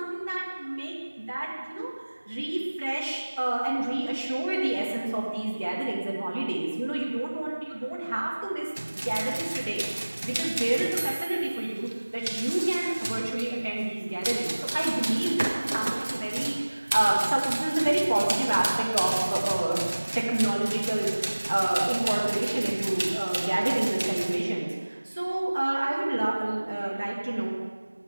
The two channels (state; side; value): inverted; both; correlation -1.00